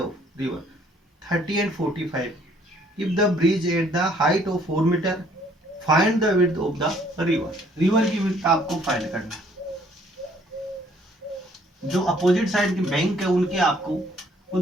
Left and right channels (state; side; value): normal; both; correlation 0.62